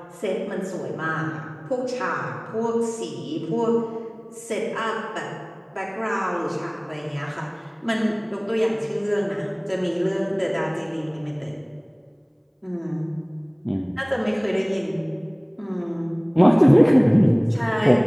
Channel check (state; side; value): identical; both; correlation 1.00